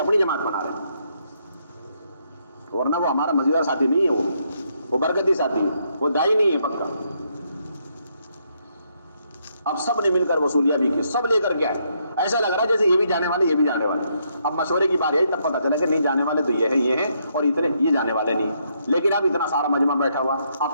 جماعت بنا رہے ہیں. ورنہ وہ ہمارا مزیدار ساتھی نہیں ہے، وہ برکتی ساتھی ہے، وہ دائی نہیں ہے پکا. اب سب نے مل کر وصولیاں بھی کی، سب لے کر کے آئے. ایسا لگ رہا ہے جیسے یہ بھی جانے والے یہ بھی جانے والے. اب مشورے کی باری آئی تب پتہ چلا کہ نہیں جانے والے تو یہ ہیں اور اتنے یہ جانے والے نہیں. لیکن اب اتنا سارا مجمع بیٹھا ہوا،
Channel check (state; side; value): inverted; both; correlation -0.75